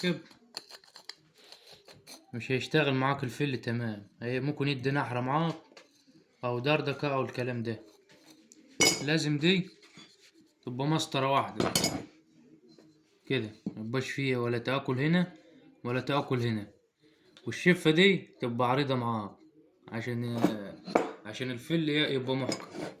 مش هيشتغل معاك الفل تمام. هي ممكن يدي نحرة معاك أو دردكة أو الكلام ده. لازم دي تبقى مسطرة واحدة كده، ميبقاش فيها ولا تآكل هنا ولا تآكل هنا، والشفة دي تبقى عريضة معاك عشان الفل يبقى محكم.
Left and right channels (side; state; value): both; identical; correlation 1.00